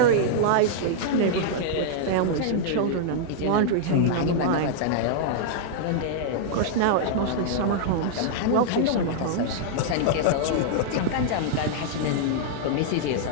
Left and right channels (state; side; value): different; both; correlation -0.01